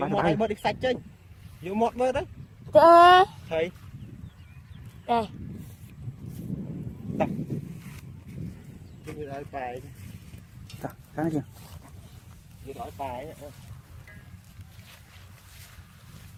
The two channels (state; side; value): identical; both; correlation 1.00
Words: mót đây bớt đi sạch chứ vô mót bớt đấy Thế. thầy Đây. như nói bài cái này kìa như nói bài ấy.